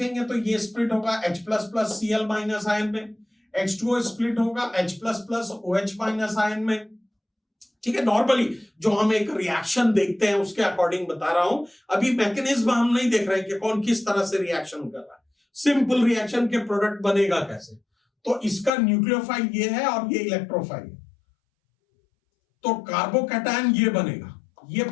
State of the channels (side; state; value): right; drops out; at 18.7 s